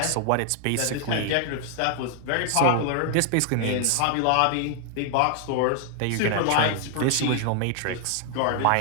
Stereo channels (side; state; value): both; different; correlation 0.00